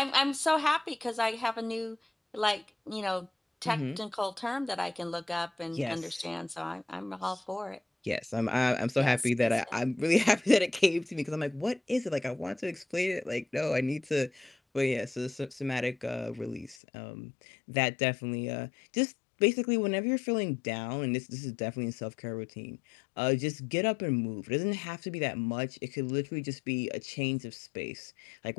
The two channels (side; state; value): right; drops out; at 16.8 s